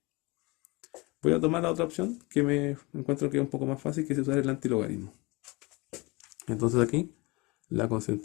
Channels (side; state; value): right; quieter; 25.5 dB